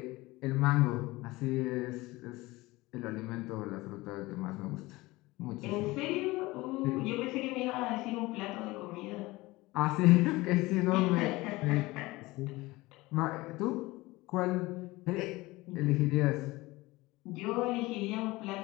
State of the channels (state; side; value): quieter; right; 20.6 dB